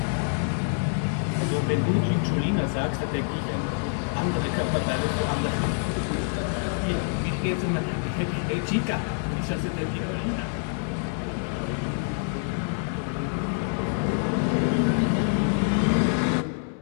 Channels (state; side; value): silent; right; 59 dB below the other